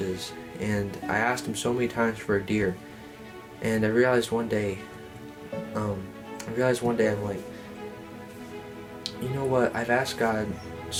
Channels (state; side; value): identical; both; correlation 1.00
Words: and I asked Him so many times for a deer. And I realized one day, I'm like, you know what? I've asked God